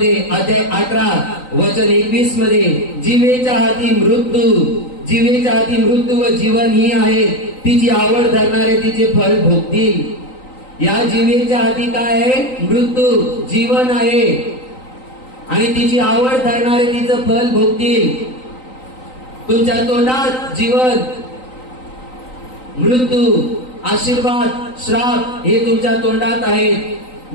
अध्याय 18 वचन 21 मध्ये, जीवेच्या हाती मृत्यू व जीवन ही आहे, तिची आवड धरणारे तिचे फळ भोगतील. या जीवेच्या हाती काय आहे? मृत्यू, जीवन आहे, आणि तिची आवड धरणारे तिचं फळ भोगतील. तुमच्या तोंडात जीवन, मृत्यू, आशीर्वाद, श्राप हे तुमच्या तोंडात आहेत.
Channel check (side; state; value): right; late; 3.9 ms